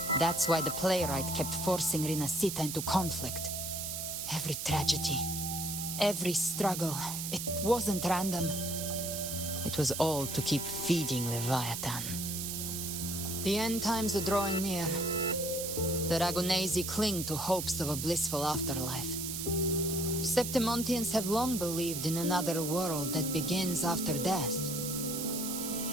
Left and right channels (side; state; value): right; noise; hiss, 4 dB below the sound